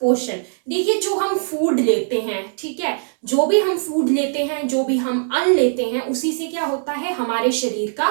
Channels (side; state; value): left; silent; digital silence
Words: पोषण। देखिए, जो हम फूड लेते हैं, ठीक है, जो भी हम फूड लेते हैं, जो भी हम अन्न लेते हैं, उसी से क्या होता है? हमारे शरीर का